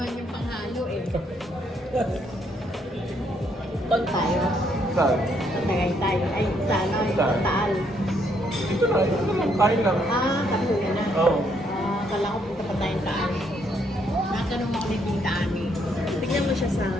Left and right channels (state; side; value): normal; both; correlation 0.72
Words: niyong panghalo eh. Kon tayo. Saan? Tagaytay. Ay, sana. Saan? Taal. Dito na, kain lang. Katuya na. Oo. Kala ko punta pa tayong Taal. Natanong ako ni Tita Ani. Tignan mo siya, Sam.